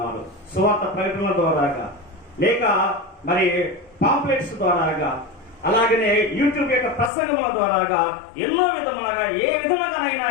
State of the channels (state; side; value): drops out; right; at 7.1 s